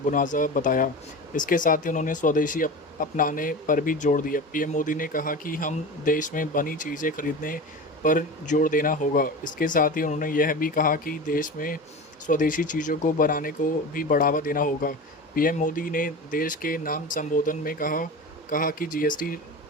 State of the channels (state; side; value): normal; both; correlation 0.30